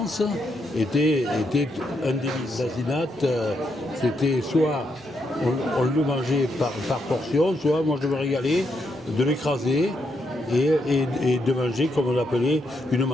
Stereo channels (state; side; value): normal; both; correlation 0.79